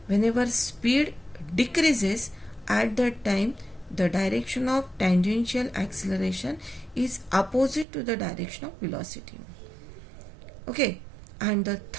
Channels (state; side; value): drops out; left; at 7.9 s